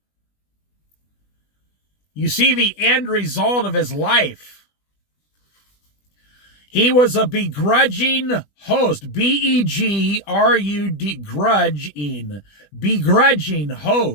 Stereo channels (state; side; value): late; right; 20 ms